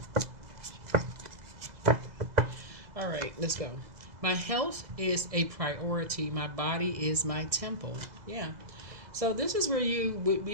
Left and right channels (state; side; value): late; left; 2.0 ms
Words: All right, let's go. My health is a priority. My body is my temple. Yeah. So this is where you,